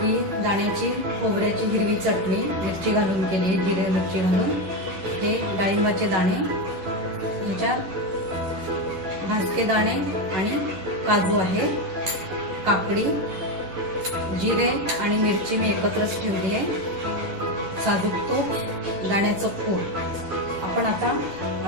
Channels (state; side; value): late; left; 11 ms